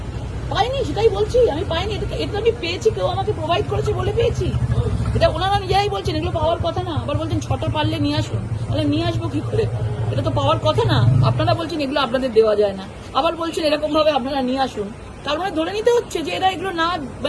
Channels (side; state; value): both; identical; correlation 1.00